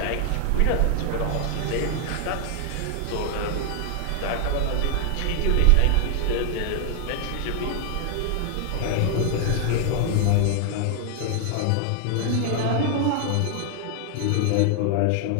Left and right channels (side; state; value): both; different; correlation 0.00